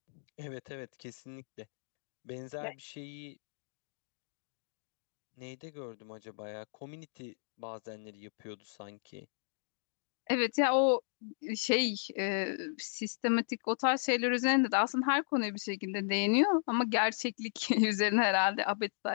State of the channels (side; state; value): right; silent; digital silence